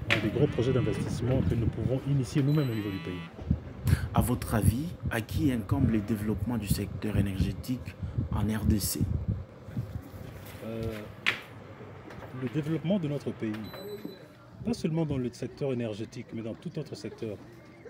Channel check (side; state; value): both; identical; correlation 1.00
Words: dans des gros projets d'investissement que nous pouvons initier nous-mêmes au niveau du pays. À votre avis, à qui incombe le développement du secteur énergétique en RDC? Le développement de notre pays, pas seulement dans le secteur énergétique, mais dans tout autre secteur,